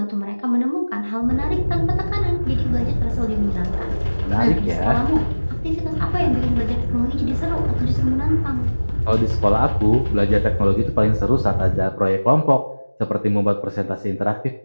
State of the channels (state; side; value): inverted; both; correlation -1.00